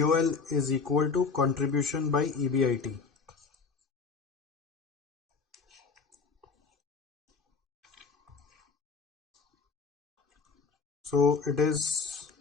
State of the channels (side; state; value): right; quieter; 4.9 dB